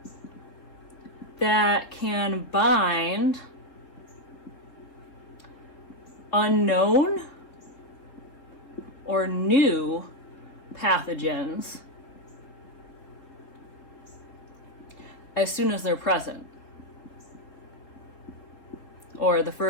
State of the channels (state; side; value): late; right; 3.8 ms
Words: that can bind unknown or new pathogens as soon as they're present, or the